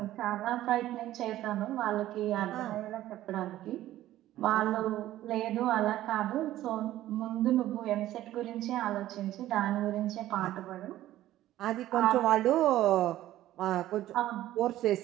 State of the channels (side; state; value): left; quieter; 14.2 dB